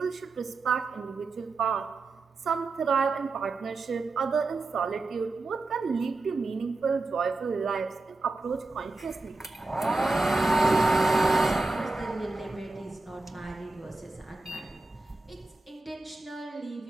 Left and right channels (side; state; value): left; quieter; 3.4 dB